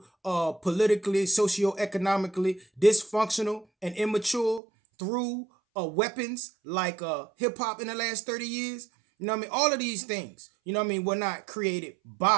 politically, socioeconomically dysfunctional and immature through weapons like hip hop in the last 30 years. You know what I mean? All of these things, were not created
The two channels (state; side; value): drops out; left; at 4.6 s